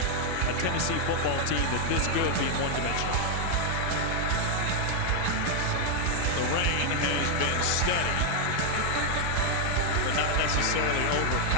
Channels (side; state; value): both; different; correlation 0.00